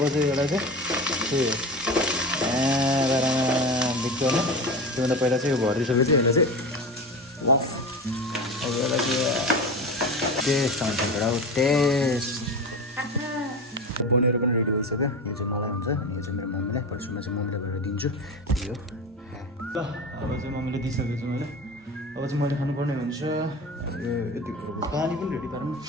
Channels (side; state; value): both; normal; correlation 0.27